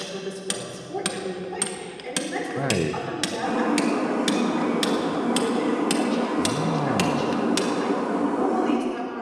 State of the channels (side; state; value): both; identical; correlation 1.00